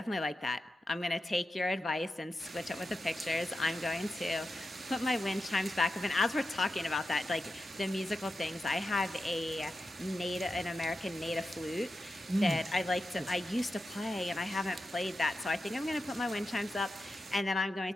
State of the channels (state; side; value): normal; both; correlation 0.90